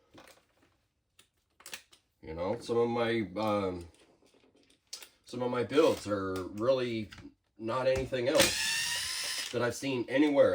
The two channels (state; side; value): identical; both; correlation 1.00